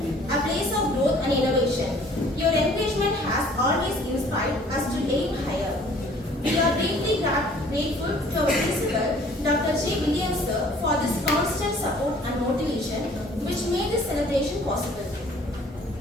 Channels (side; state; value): both; normal; correlation 0.54